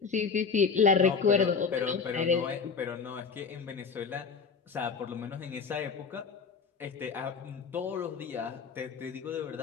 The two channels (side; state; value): right; quieter; 5.5 dB